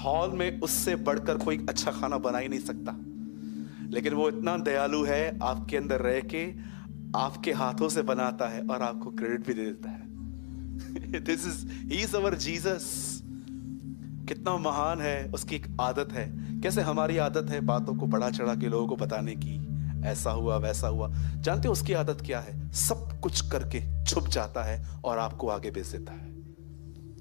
में उससे बढ़कर कोई अच्छा खाना बना ही नहीं सकता, लेकिन वो इतना दयालु है, आपके अंदर रह के आपके हाथों से बनाता है और आपको क्रेडिट भी दे देता है। He is our Jesus. कितना महान है, उसकी एक आदत है। कैसे हमारी आदत है बातों को बढ़ा चढ़ा के लोगों को बताने की, ऐसा हुआ वैसा हुआ। जानते हो उसकी आदत क्या है? सब कुछ करके छुप जाता है और आपको आगे भेज देता है।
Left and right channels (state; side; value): silent; right; 56 dB below the other